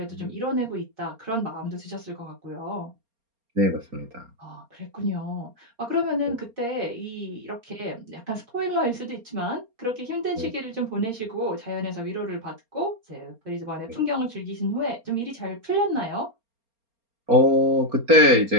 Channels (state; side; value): late; left; 4.3 ms